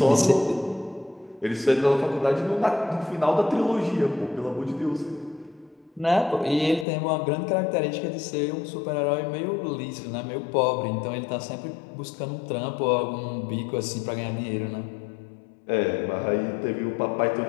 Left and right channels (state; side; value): drops out; right; at 6.9 s